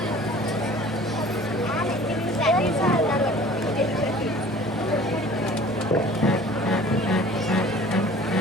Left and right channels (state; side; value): normal; both; correlation 0.47